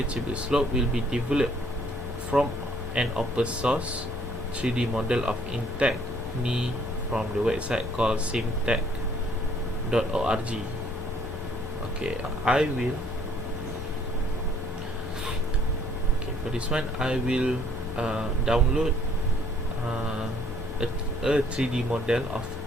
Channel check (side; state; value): both; normal; correlation 0.62